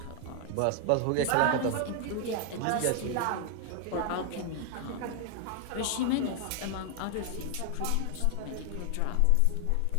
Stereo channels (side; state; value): both; different; correlation 0.00